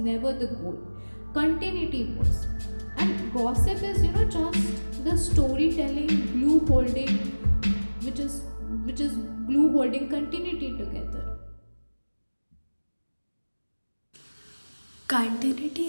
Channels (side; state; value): both; inverted; correlation -1.00